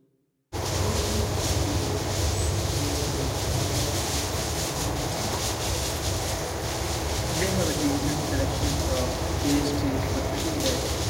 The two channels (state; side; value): identical; both; correlation 1.00